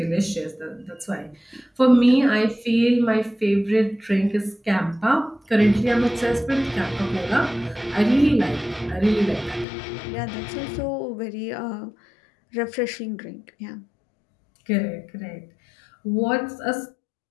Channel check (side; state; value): right; drops out; at 9.7 s